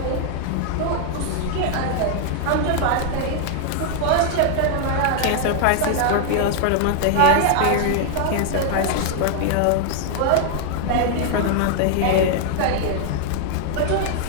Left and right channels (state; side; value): different; both; correlation 0.00